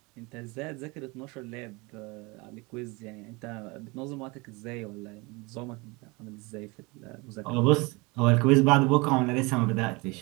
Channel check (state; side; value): quieter; left; 26.1 dB